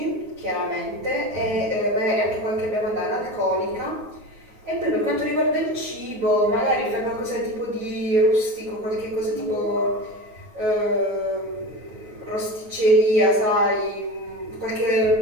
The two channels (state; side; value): late; left; 9.4 ms